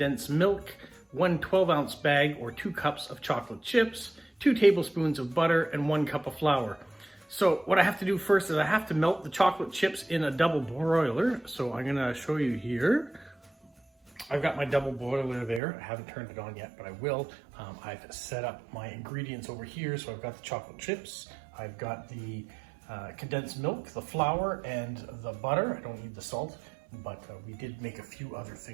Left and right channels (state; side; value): drops out; left; at 15.6 s